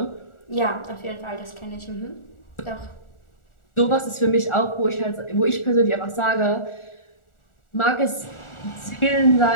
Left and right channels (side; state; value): right; late; 1.4 ms